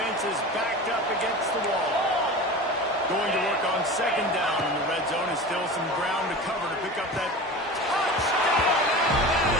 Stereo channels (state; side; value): normal; both; correlation 0.33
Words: is backed up against the wall. Going to work on second down in the red zone, and still some ground to cover to pick up that touchdown